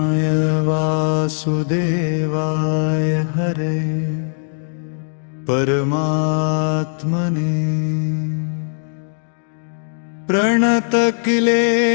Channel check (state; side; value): silent; right; digital silence